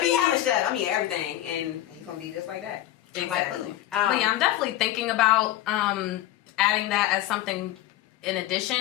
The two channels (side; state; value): right; quieter; 14.2 dB